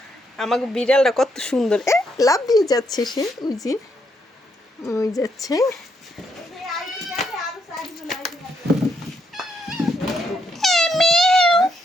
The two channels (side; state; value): both; normal; correlation 0.76